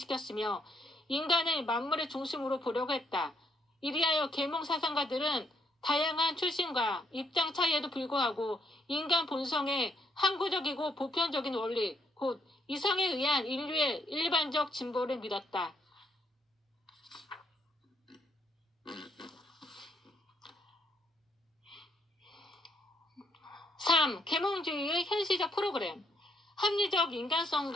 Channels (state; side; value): normal; both; correlation 0.72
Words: 인간을 만물의 중심으로 보려고 했다. 이리하여 계몽 사상가들은 다양한 출신과 입장 차이에도 불구하고 인간 본성의 항구적이고 보편적인 원리, 곧 이성에 의한 인류의 일반적 진보를 믿었다. 3. 계몽주의의 현실적 프로그램. 합리적